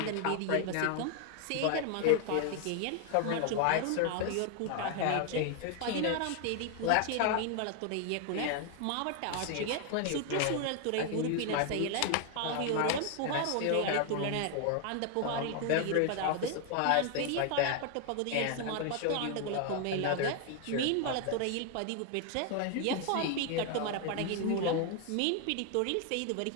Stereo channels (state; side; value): different; both; correlation 0.00